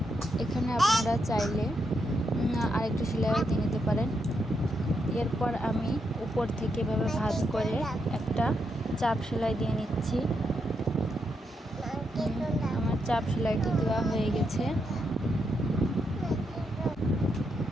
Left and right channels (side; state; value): both; normal; correlation 0.81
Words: এখানে আপনারা চাইলে আরেকটি সেলাই দিয়ে নিতে পারেন। এরপর আমি উপর থেকে এভাবে ভাঁজ করে একটা চাপ সেলাই দিয়ে নিচ্ছি। আমার চাপ সেলাইটি দেওয়া হয়ে গেছে।